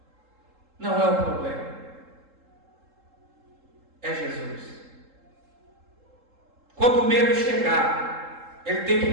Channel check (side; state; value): left; late; 3.8 ms